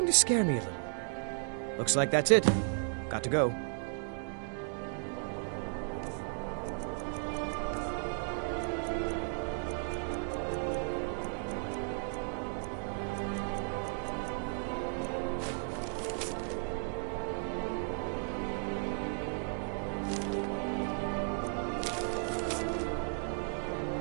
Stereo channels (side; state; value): left; silent; 55 dB below the other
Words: to scare me a little. Looks like that's it. Got to go.